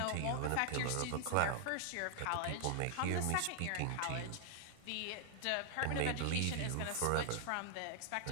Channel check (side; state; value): both; different; correlation 0.00